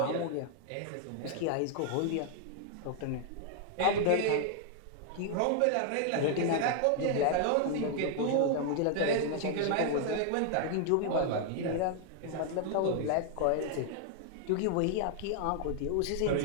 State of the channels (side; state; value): both; different; correlation 0.00